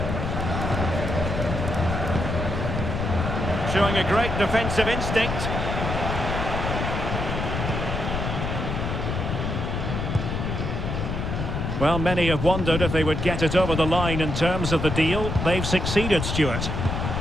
Showing a great defensive instinct. Well, many have wondered if they would get it over the line in terms of the deal. They've succeeded, Stuart.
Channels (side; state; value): left; noise; rumble, 2 dB below the sound